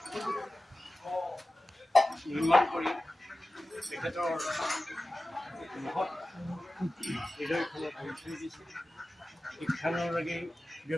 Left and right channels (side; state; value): both; normal; correlation 0.95